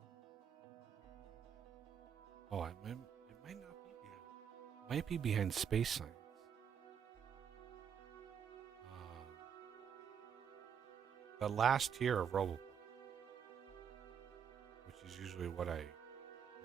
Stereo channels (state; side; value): quieter; left; 7.8 dB